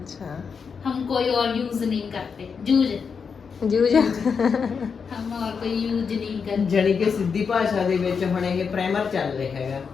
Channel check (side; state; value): right; quieter; 5.9 dB